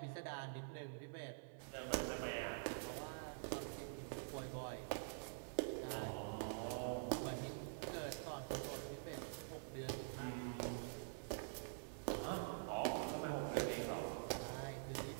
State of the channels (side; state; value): left; silent; digital silence